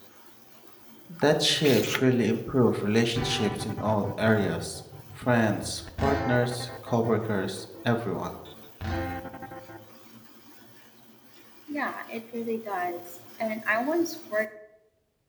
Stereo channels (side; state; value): both; identical; correlation 1.00